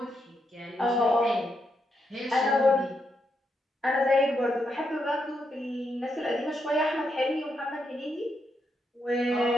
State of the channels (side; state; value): both; normal; correlation 0.81